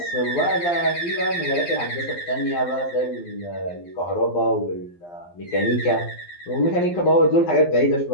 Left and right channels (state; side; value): late; right; 11 ms